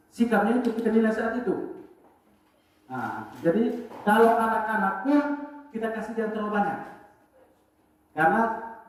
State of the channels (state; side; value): identical; both; correlation 1.00